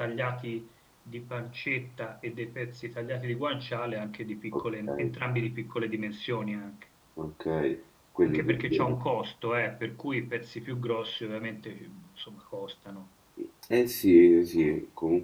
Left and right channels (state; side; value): identical; both; correlation 1.00